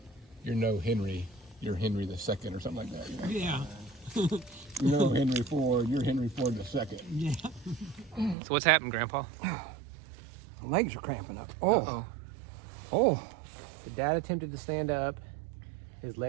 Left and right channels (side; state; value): left; drops out; at 8.3 s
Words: "You're no Henry, you're Henry the Second," or something like that. You know? Yeah. You're no Henry Ford, you're Henry Ford the Second. Yeah. So what's happened, Grandpa? Legs are cramping up. Uh-oh. Oh. The dad attempted to stand up. His